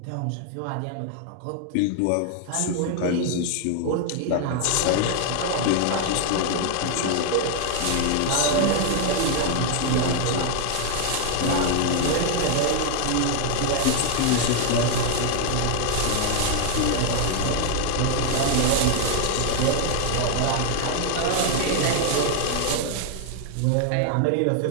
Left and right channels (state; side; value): different; both; correlation 0.00